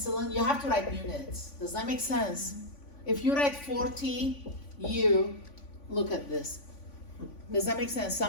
you have to write units. Does that make sense? If you write 40, you look at this. Does that make sense?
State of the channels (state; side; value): late; right; 3.5 ms